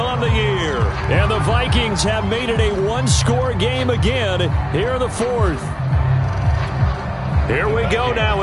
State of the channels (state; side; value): identical; both; correlation 1.00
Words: on the year. And the Vikings have made it a one-score game again here in the 4th. Here we go now